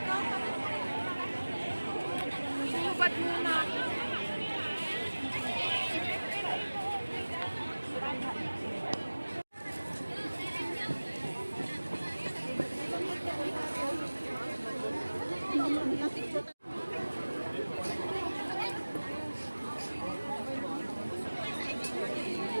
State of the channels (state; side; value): inverted; both; correlation -1.00